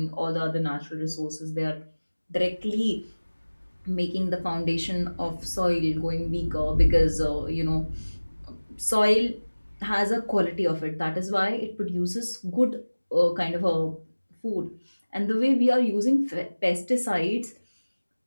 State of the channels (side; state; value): both; inverted; correlation -1.00